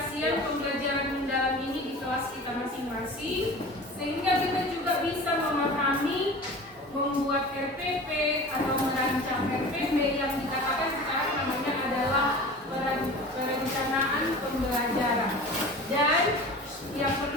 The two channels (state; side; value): normal; both; correlation 0.37